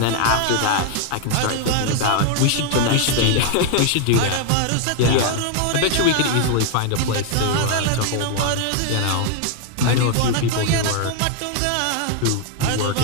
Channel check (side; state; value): both; different; correlation 0.00